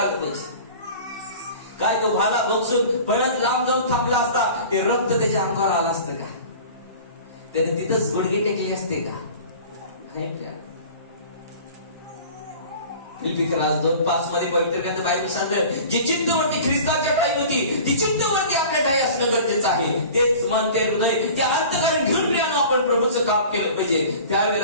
पाहिजे. काय तो भाला बघसून परत लांब जाऊन थांबला असता, ते रक्त त्याच्या अंगावर आलं असतं काय? त्याने तिथंच गुडघे टेकले असते का? नाही का? फिलिपिकर 2:5 मध्ये पवित्र ग्रंथ बायबल सांगतं, जी चित्तवरती ख्रिस्ताच्या ठाई होती ती चित्तवरती आपल्या ठाई असणं गरजेचं आहे. तेच मन, ते हृदय, त्या अंतःकरण घेऊन प्रियानो आपण प्रभूचं काम केलं पाहिजे.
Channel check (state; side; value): inverted; both; correlation -0.41